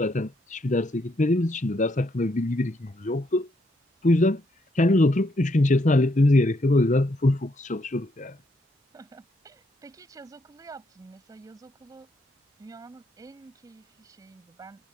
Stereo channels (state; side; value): normal; both; correlation 0.75